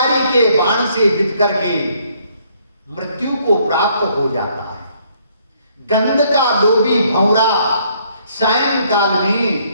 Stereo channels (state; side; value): inverted; both; correlation -0.66